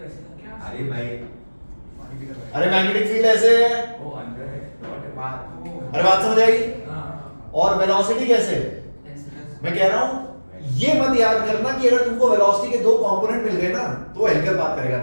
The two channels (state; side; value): inverted; both; correlation -1.00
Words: अरे भाई अरे मैग्नेटिक फील्ड ऐसे है, वो अंदर है अरे बात समझ आई? और वेलोसिटी कैसे? मैं कह रहा हूं ये मत याद करना कि अगर तुमको वेलोसिटी के 2 कंपोनेंट मिल गए ना तो हेलिकल बात करेगा,